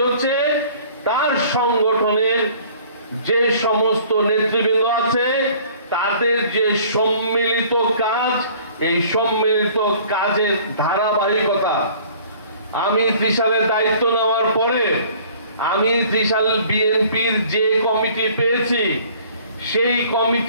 হচ্ছে তার সংগঠনের যে সমস্ত নেতৃবৃন্দ আছে তাদের যে সম্মিলিত কাজ, এই সম্মিলিত কাজের ধারাবাহিকতা। আমি ত্রিশালের দায়িত্ব নেওয়ার পরে আমি ত্রিশাল বিএনপির যে কমিটি পেয়েছি সেই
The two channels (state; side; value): inverted; both; correlation -0.52